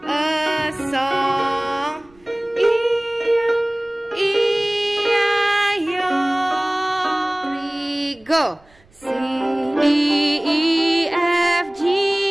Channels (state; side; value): noise; right; rumble, 30 dB below the sound